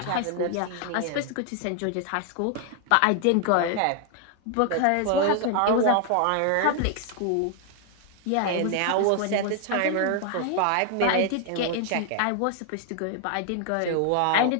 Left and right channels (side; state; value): both; different; correlation 0.00